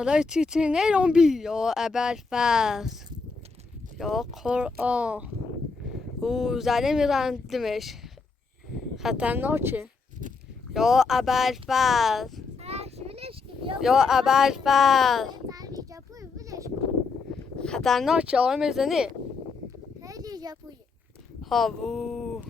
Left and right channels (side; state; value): right; quieter; 4.5 dB